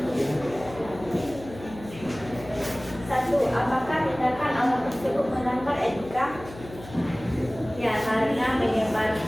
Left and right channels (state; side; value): noise; left; hum, 16 dB below the sound